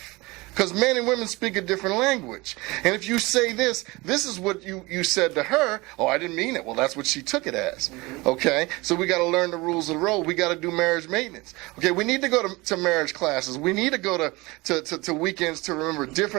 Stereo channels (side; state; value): left; quieter; 23.1 dB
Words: because men and women speak a different language. And if you say this is what you said to her, oh, I didn't mean it. Well, that's what she took it as. Okay? So we got to learn the rules of the road. We got to do marriage maintenance. Okay, we need to go to marriage classes. We need to go to weekends to remember